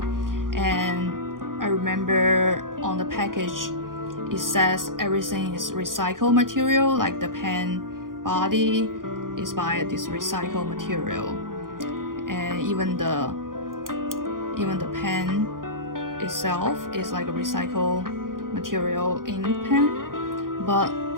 and I remember on the package it says everything is recycled material, like the pen body is by this recycled material, and even the pen itself is like a recycled material ink pen. But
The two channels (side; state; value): left; late; 0.90 ms